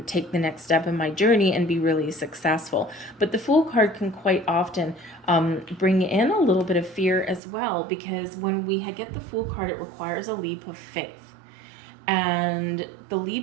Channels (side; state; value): left; drops out; at 7.4 s